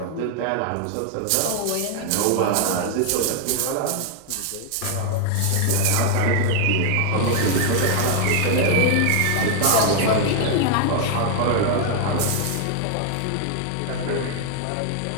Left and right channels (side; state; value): both; different; correlation 0.00